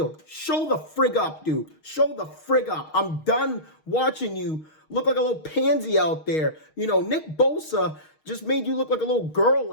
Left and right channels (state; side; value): late; right; 6.4 ms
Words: Show the frig up, dude. Show the frig up. I'm done watching you look like a little pansy out there. Nick Bosa just made you look like a little girl